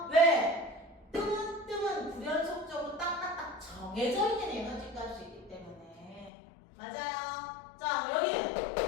왜? 뜸은 불연속적으로 딱딱딱 정해져 있는 에너지 값이 있기 때문에 맞아요. 자, 여기.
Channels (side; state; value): right; drops out; at 6.3 s